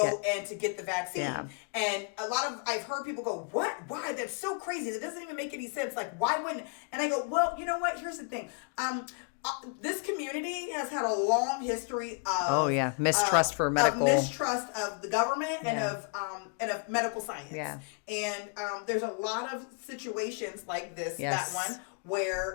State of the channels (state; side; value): quieter; right; 39.0 dB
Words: and to get the vaccine. Yeah. And I've heard people go, what? Why? That's so crazy. That doesn't even make any sense. Like, why wouldn't? And I go, well, you know what? Here's the thing. This community has had a long history of mistrust for medical, mistrust of the government and of medical science. Yeah. And there's a lot of situations like this, that one,